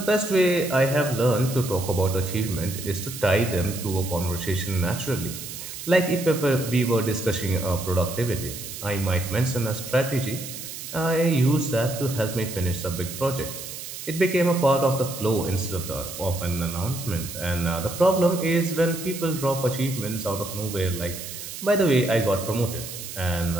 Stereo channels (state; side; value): noise; right; hiss, 10 dB below the sound